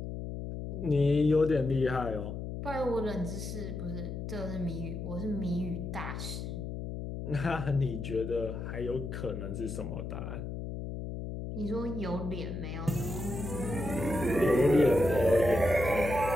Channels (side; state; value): left; noise; hum, 6 dB below the sound